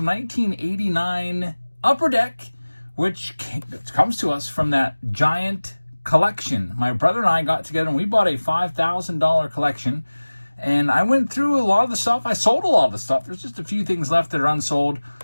1989 Upper Deck, which comes to us from that giant collection. My brother and I got together and we bought a $5,000 collection. And I went through a lot of the stuff. I sold a lot of the stuff. There's just a few things left that are unsold.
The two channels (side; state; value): both; inverted; correlation -1.00